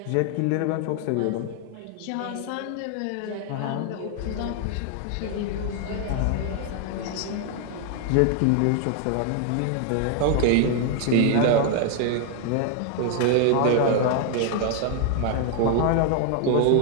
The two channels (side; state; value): both; different; correlation 0.00